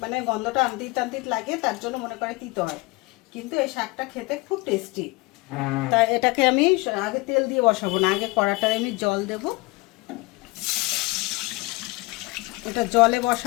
মানে গন্ধটা আনতিত টানতিত লাগে, তার জন্য মনে করে তিতো হয়, কিন্তু এই শাকটা খেতে খুব টেস্টি। তা এটাকে আমি আগে তেল দিয়ে বসাবো না, আগে কড়াটায় আমি জল দেবো। এটা জলে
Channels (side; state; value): right; quieter; 23.9 dB